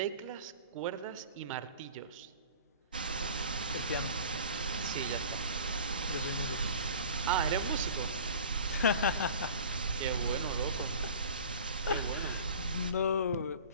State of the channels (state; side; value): inverted; both; correlation -0.42